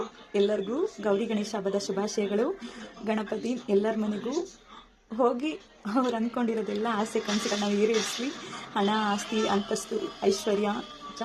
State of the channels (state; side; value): identical; both; correlation 1.00